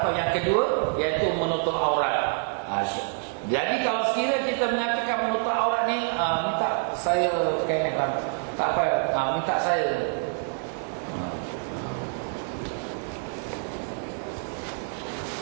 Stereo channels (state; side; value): silent; left; 60 dB below the other